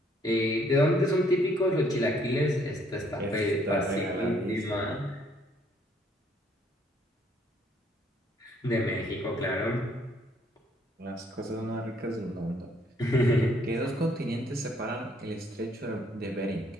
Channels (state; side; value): normal; both; correlation 0.66